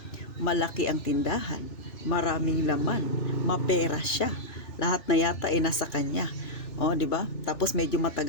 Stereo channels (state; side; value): late; right; 3.4 ms